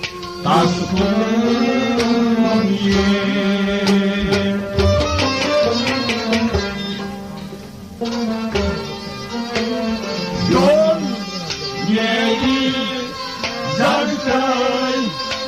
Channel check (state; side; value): identical; both; correlation 1.00